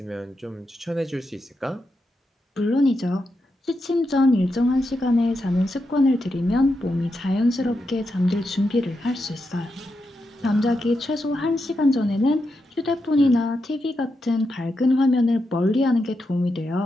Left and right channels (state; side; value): normal; both; correlation 0.86